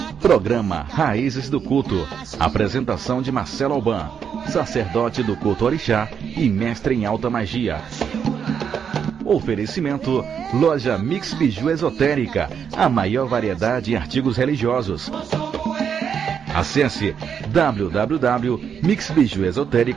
programa Raízes do Culto. Apresentação de Marcelo Alban, sacerdote do culto orixá e mestre em alta magia. Oferecimento, loja Mix Biju Esotérica, a maior variedade em artigos religiosos. Acesse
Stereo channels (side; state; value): left; quieter; 7.5 dB